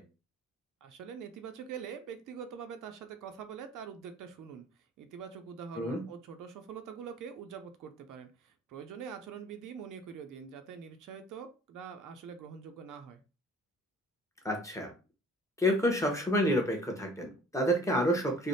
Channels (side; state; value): both; normal; correlation 0.50